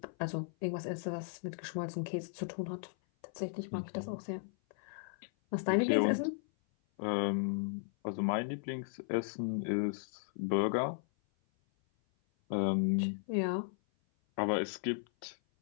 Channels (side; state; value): right; silent; 54 dB below the other